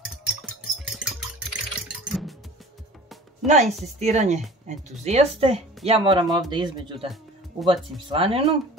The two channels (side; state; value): both; normal; correlation 0.43